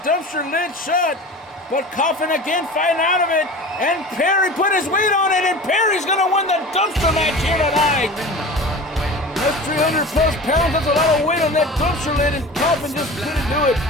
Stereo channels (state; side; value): normal; both; correlation 0.36